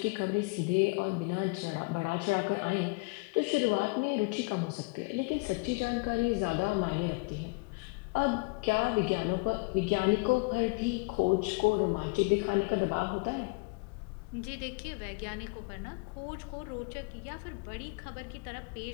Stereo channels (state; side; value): quieter; right; 28.3 dB